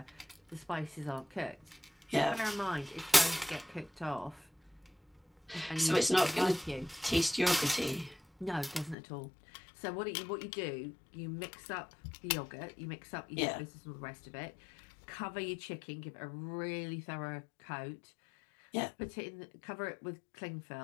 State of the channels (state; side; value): drops out; right; at 9.0 s